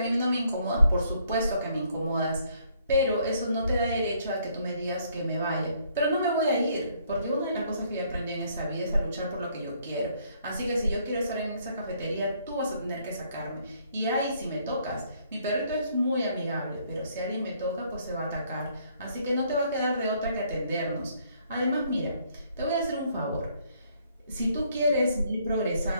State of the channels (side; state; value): both; inverted; correlation -0.67